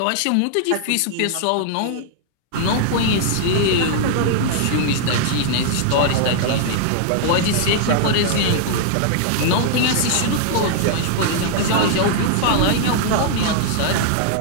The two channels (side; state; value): both; different; correlation -0.01